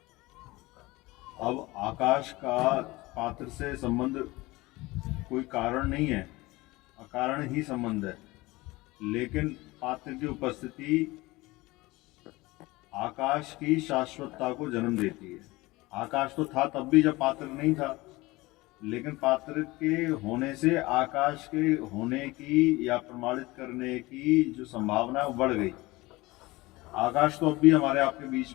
अब आकाश का पात्र से संबंध कोई कारण नहीं है, अकारण ही संबंध है, लेकिन पात्र की उपस्थिति आकाश की शाश्वतता को जन्म देती है। आकाश तो था तब भी जब पात्र नहीं था, लेकिन पात्र के होने से आकाश के होने की या प्रमाणित करने की जो संभावना है वो बढ़ गई। आकाश तो अब भी हमारे आपके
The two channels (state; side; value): quieter; right; 21.0 dB